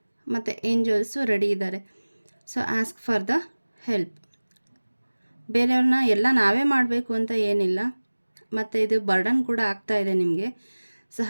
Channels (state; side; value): inverted; both; correlation -1.00